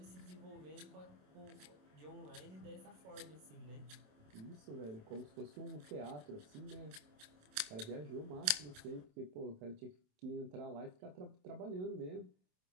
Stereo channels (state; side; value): late; left; 27 ms